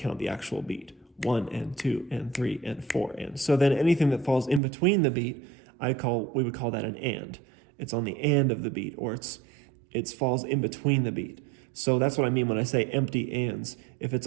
the actual beat. 1 and 2 and 3 and 4 and. So then anything that falls in between the beat, we would call that an and. It's on the and of the beat, or it falls in between the beat. So that's what I mean when I say empty ands. If it's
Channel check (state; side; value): drops out; left; at 4.6 s